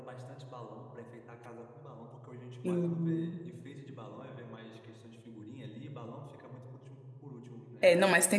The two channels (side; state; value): both; identical; correlation 1.00